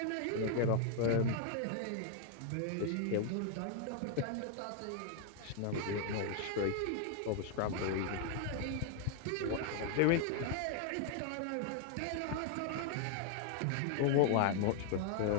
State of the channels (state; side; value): different; both; correlation 0.00